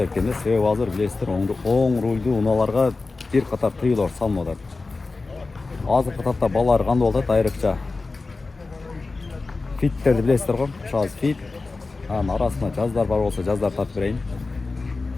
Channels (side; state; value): right; quieter; 3.7 dB